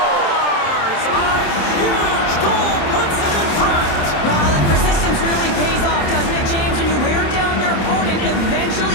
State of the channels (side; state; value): right; late; 27 ms